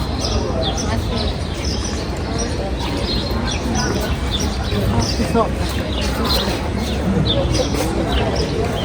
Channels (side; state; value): both; identical; correlation 1.00